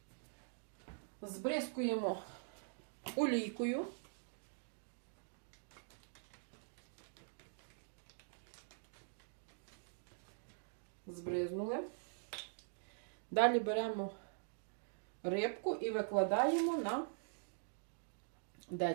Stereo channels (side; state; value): left; silent; digital silence